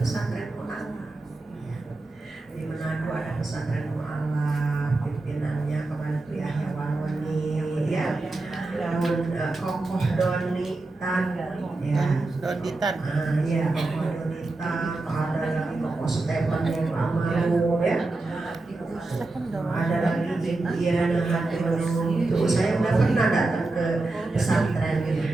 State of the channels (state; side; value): quieter; left; 3.1 dB